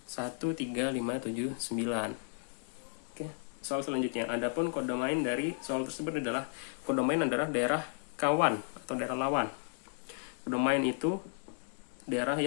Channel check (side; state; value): right; silent; digital silence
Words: 1, 3, 5, 7, 9. Oke, soal selanjutnya. Adapun kodomain dari soal tersebut adalah kodomain adalah daerah kawan atau daerah lawan. Kodomain itu daerah